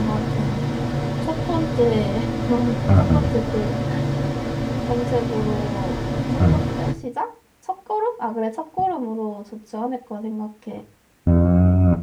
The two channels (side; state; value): both; identical; correlation 1.00